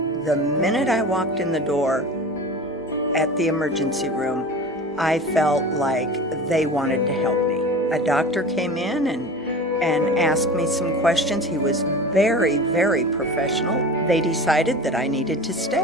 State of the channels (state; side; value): normal; both; correlation 0.35